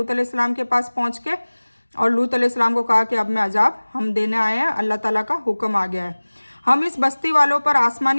अलैहिस्सलाम के पास पहुँच के, और लूत अलैहिस्सलाम को कहा कि अब मैं अजाब हम देने आए हैं, अल्लाह ताला का हुक्म आ गया है, हम इस बस्ती वालों पर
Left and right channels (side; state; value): both; inverted; correlation -1.00